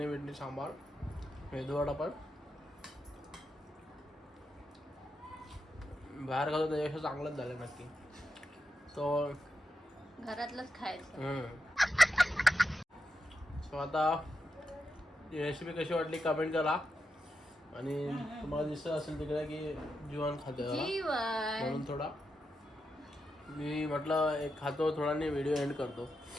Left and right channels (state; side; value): normal; both; correlation 0.86